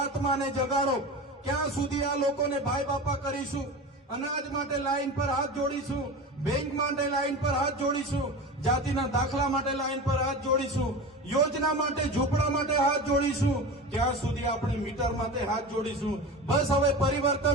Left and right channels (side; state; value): both; normal; correlation 0.29